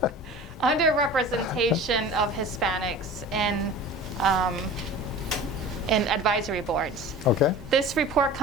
underrepresentation of Hispanics in advisory boards. Okay. This report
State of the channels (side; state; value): both; normal; correlation 0.39